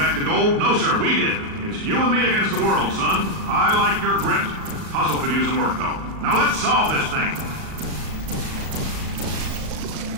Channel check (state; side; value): late; left; 38 ms